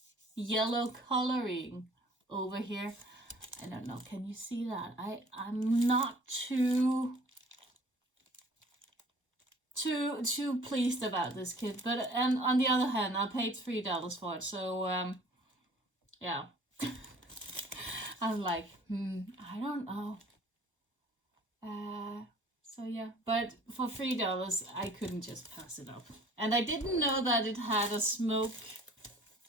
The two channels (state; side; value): normal; both; correlation 0.51